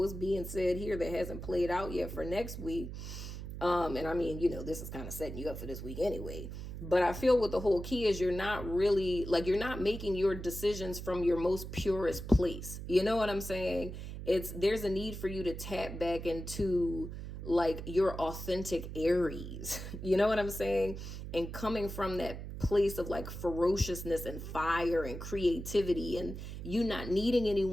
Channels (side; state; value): right; noise; hum, 8 dB below the sound